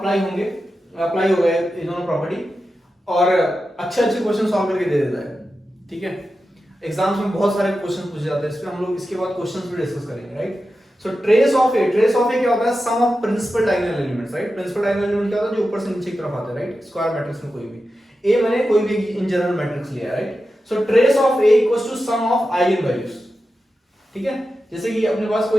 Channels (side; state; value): both; normal; correlation 0.91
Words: हो गए ये दोनों प्रॉपर्टी और अच्छे अच्छे क्वेश्चन सॉल्व करके दे देता है। ठीक है, एग्जाम्स में बहुत सारे क्वेश्चन पूछे जाते हैं, इसमें हम लोग इसके बाद क्वेश्चंस भी डिस्कस करेंगे, right. So trace of A क्या होता है? Sum of principal diagonal elements, right. Principal diagonal element क्या होता है? जो ऊपर से नीचे की तरफ आते हैं, राइट। स्क्वायर मैट्रिक्स में कोई भी ए मैंने कोई भी इन जनरल मैट्रिक्स लिया है, right. So trace of A equals to sum of eigen values. ठीक है, जैसे कि अपने पास